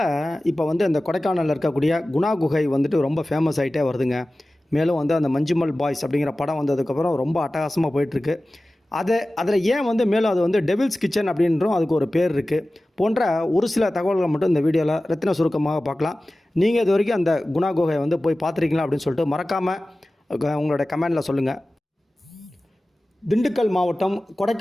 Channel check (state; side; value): normal; both; correlation 0.96